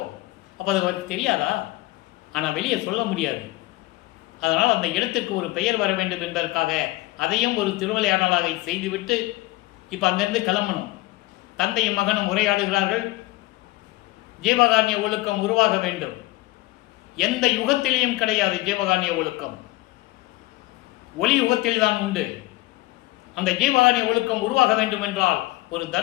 அது அவருக்கு தெரியாதா? ஆனால் வெளியே சொல்ல முடியாது. அதனால் அந்த இடத்திற்கு ஒரு பெயர் வர வேண்டும் என்பதற்காக அதையும் ஒரு திருவிளையாடலாக செய்துவிட்டு இப்போ அங்கிருந்து கிளம்பணும். தந்தையும் மகனும் உரையாடுகிறார்கள். ஜீவகாருண்ய ஒழுக்கம் உருவாக வேண்டும். எந்த யுகத்திலேயும் கிடையாது ஜீவகாருண்ய ஒழுக்கம், ஒளி யுகத்தில் தான் உண்டு. அந்த ஜீவகாருண்ய ஒழுக்கம் உருவாக வேண்டும் என்றால் ஒரு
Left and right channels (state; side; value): quieter; right; 19.6 dB